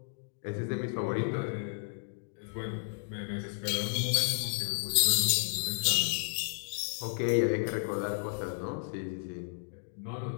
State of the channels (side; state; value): right; silent; digital silence